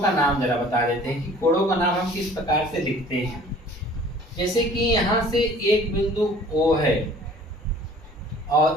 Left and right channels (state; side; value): normal; both; correlation 0.50